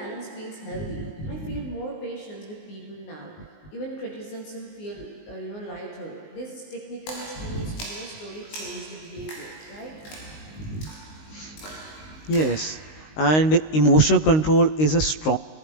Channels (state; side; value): late; right; 19 ms